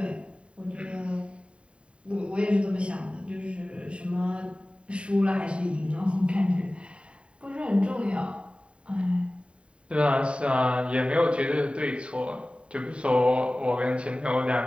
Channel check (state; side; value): late; left; 0.057 ms